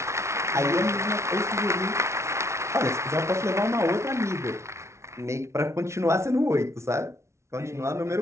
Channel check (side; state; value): left; late; 0.13 ms